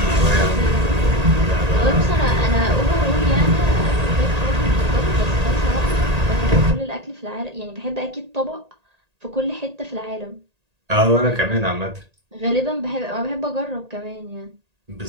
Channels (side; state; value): left; late; 1.8 ms